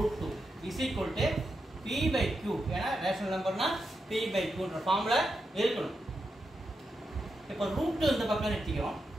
2 is equal to p/q. ஏன்னா rational நம்பர்னா p/q என்ற ஃபார்முல இருக்கணும். இப்போ ரூட் இந்த பக்கம் எடுத்துக்கிறோம்.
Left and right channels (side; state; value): both; normal; correlation 0.86